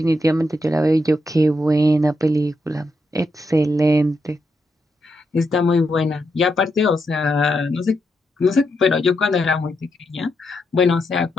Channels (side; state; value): both; normal; correlation 0.82